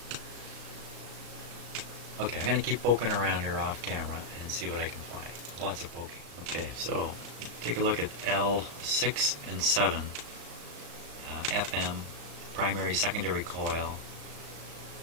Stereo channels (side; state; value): left; late; 35 ms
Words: Okay, I'm going to keep poking around here off camera and see what I can find. Lots of poking. Okay, so take a look at L6 and 7, FM, primary secondary coil